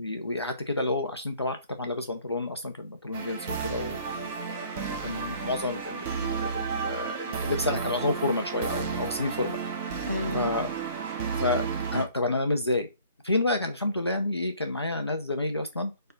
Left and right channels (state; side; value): inverted; both; correlation -0.54